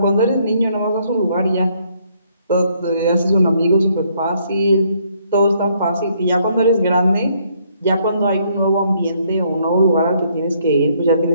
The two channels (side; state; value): both; inverted; correlation -0.69